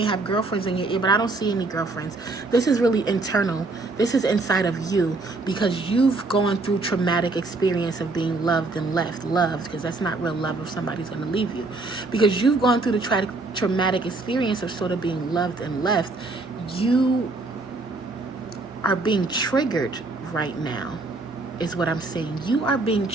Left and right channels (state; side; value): quieter; left; 3.3 dB